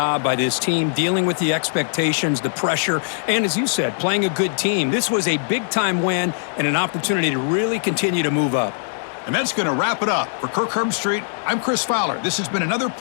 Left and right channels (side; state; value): right; silent; digital silence